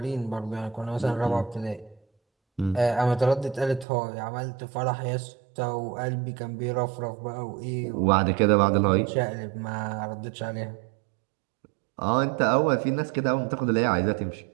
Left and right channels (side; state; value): left; drops out; at 3.9 s